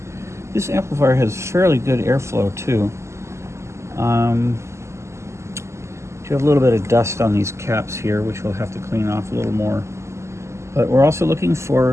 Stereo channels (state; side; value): late; left; 0.13 ms